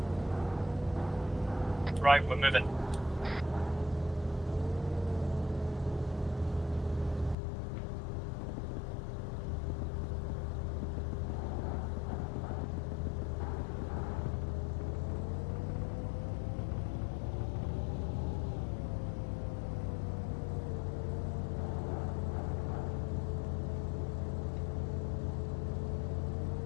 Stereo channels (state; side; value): drops out; right; at 7.4 s